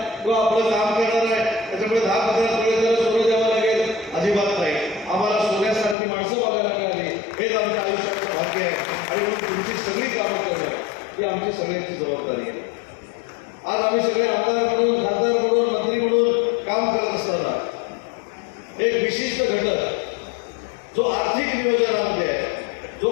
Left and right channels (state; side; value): drops out; right; at 6.0 s